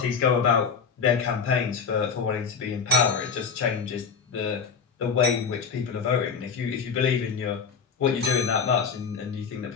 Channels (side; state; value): right; quieter; 6.0 dB